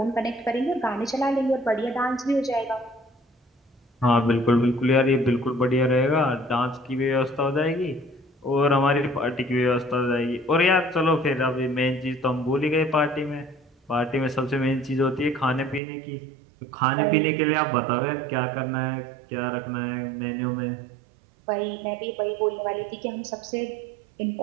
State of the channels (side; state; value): left; drops out; at 15.8 s